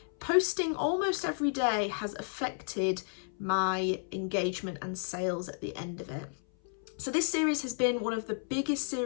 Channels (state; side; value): silent; right; 56 dB below the other